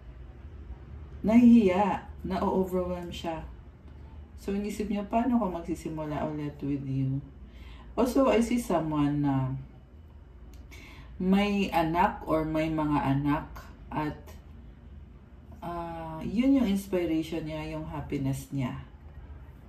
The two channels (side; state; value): both; identical; correlation 1.00